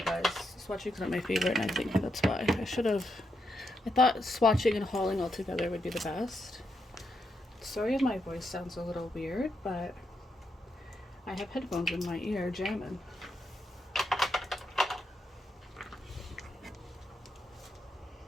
guys, swatching's not my favorite, and I think that's why I thought swatching and hauling all together would be the best. Sorry if my voice sounds a little weird, but I have headphones in my ear jamming.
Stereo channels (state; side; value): normal; both; correlation 0.82